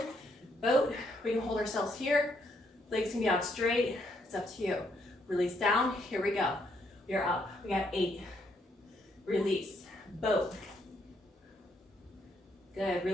boat. We can hold ourselves here. Legs can be out straight. It's up to you. Release down. Here we go. You're up. We got 8. Release. Boat. Good.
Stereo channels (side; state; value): both; normal; correlation 0.73